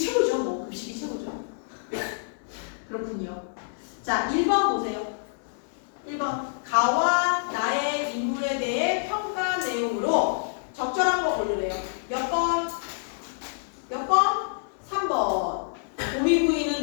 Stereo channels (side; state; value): right; silent; digital silence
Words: 뭐 급식이 최고죠. 그렇군요. 자 1번 보세요. 1번 가와 나의 인물에 대해 평가 내용으로 적절한 거 고르래요. 몇 번? 몇 번? 3번.